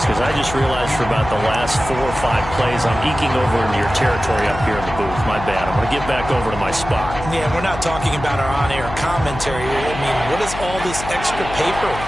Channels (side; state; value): left; noise; hum, 10 dB below the sound